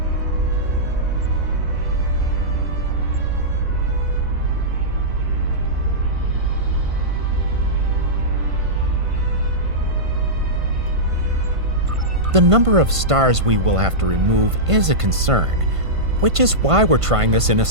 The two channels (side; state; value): left; late; 1.5 ms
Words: The number of stars we will have to remove is a concern, which is why we're trying this in a